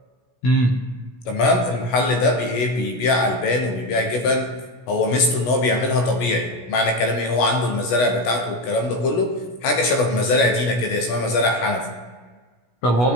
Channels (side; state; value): right; late; 16 ms